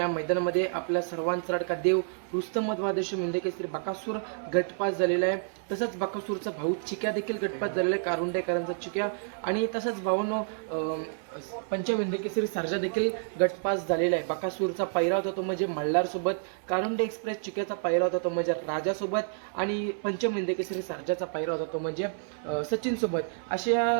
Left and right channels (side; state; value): left; silent; 57 dB below the other